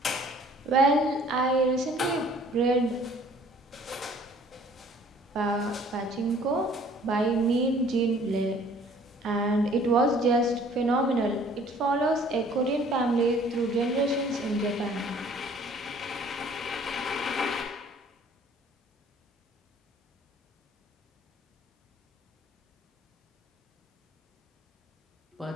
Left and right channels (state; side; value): normal; both; correlation 0.55